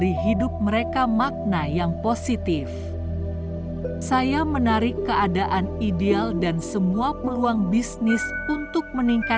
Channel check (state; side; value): identical; both; correlation 1.00